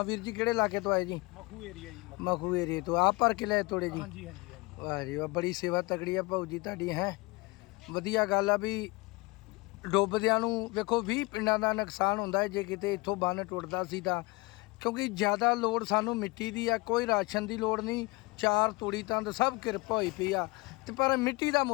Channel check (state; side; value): quieter; right; 24.9 dB